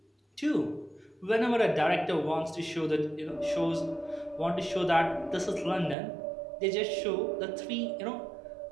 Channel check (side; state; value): left; drops out; at 6.0 s